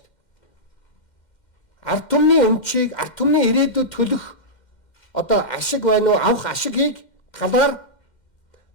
дээ. Ард түмний өмчийг, ард түмний ирээдүйд төлөх одоо ашиг байна уу, авах ашигийг талаар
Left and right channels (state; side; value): late; right; 2.1 ms